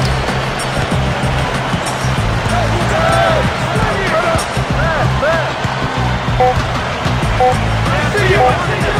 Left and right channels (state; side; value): identical; both; correlation 1.00